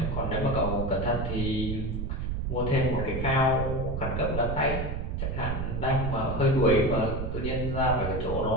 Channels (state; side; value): noise; right; rumble, 2 dB below the sound